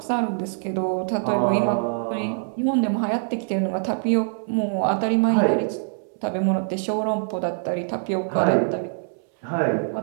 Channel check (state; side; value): silent; left; 63 dB below the other